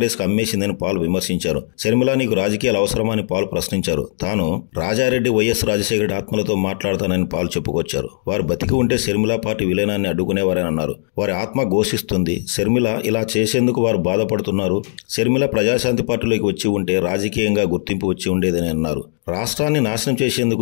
కు అమ్మేసిందని పాల్ విమర్శించారు. షర్మిల నీకు రాజకీయాలు అవసరమా అని పాల్ ప్రశ్నించారు. తాను రాజారెడ్డి వైఎస్ రాజశేఖర రెడ్డి ఆత్మలతో మాట్లాడతానని పాల్ చెప్పుకొచ్చారు. వారు బతికి ఉంటే షర్మిల పార్టీ విలీనాన్ని అడ్డుకునేవారని అన్నారు. వారి ఆత్మ ఘోషిస్తుంది. షర్మిల ఇలా చేసేందుకు వారు బాధపడుతున్నారు. షర్మిల ప్రజాశాంతి పార్టీలోకి వచ్చి ఉంటే రాజకీయంగా గుర్తింపు వచ్చి ఉండేదని అన్నారు. రాష్ట్రాన్ని నాశనం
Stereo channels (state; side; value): silent; right; digital silence